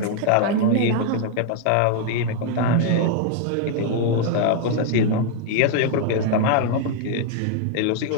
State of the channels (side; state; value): both; different; correlation 0.00